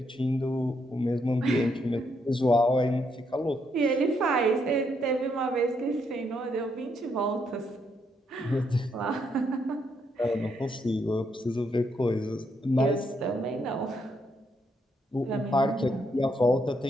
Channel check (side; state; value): both; normal; correlation 0.76